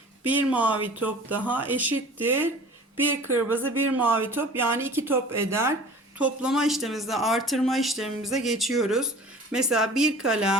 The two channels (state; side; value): normal; both; correlation 0.44